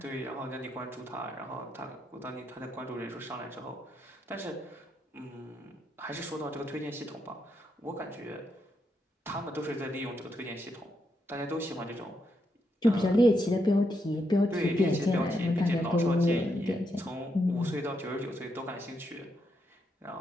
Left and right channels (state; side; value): normal; both; correlation 0.81